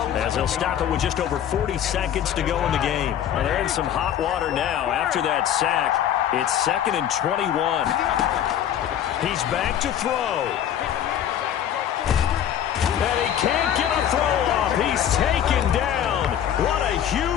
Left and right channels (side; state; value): right; quieter; 10.1 dB